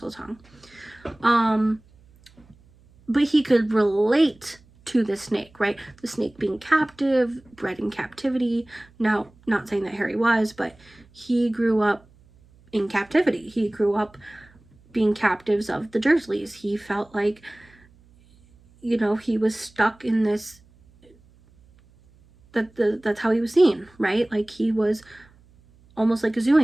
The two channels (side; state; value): right; noise; hum, 29 dB below the sound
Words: But he could relate to the snake, right? The snake being captive, bred in captivity. Now, not saying that Harry was, but he grew up in captivity. He grew up being captives of the Dursleys. He felt like, you know, he was stuck in this, that's how he was seen, right? Like he was almost like a zoo